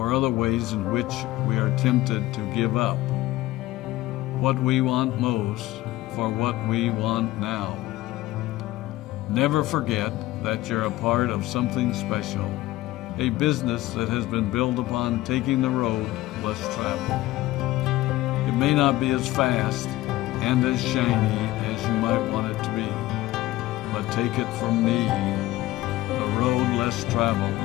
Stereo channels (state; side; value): quieter; right; 17.1 dB